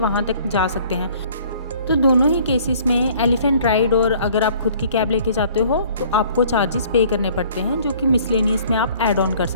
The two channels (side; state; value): both; inverted; correlation -0.55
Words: तक जा सकते हैं। तो दोनों ही केसेस में एलिफेंट राइड और अगर आप खुद की कैब लेके जाते हो तो आपको चार्जेस पे करने पड़ते हैं, जो कि मिसलेनियस में आप ऐड ऑन कर